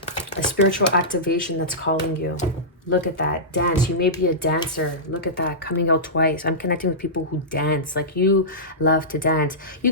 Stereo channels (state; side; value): normal; both; correlation -0.15